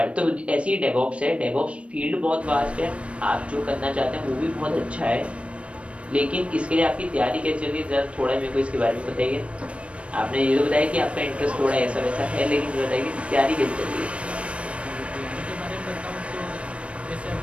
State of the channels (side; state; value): left; late; 0.061 ms